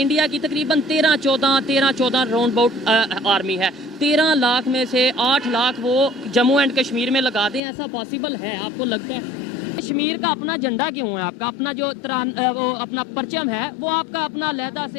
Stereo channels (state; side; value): drops out; right; at 7.6 s